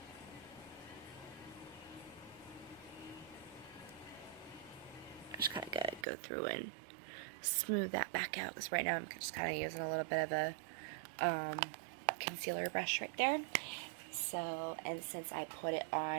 Just kind of gotta go through and smooth that back out, because right now I'm just kind of using a little bit of a concealer brush right there. So, and since I put it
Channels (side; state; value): left; drops out; at 6.1 s